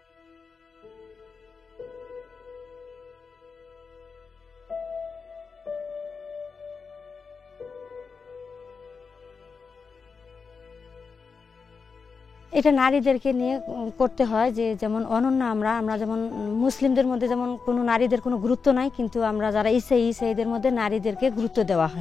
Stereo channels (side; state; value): right; quieter; 5.2 dB